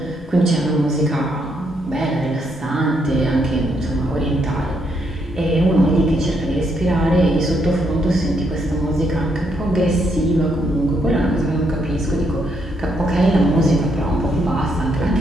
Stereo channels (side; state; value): both; normal; correlation 0.75